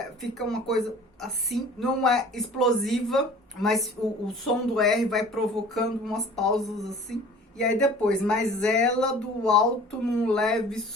fica uma coisa assim, não é explosiva, mas o som do R vai provocando umas pausas assim. E aí depois, mas ela do alto num leve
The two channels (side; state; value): both; normal; correlation 0.46